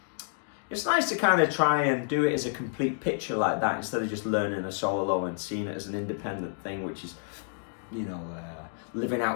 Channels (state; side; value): silent; right; digital silence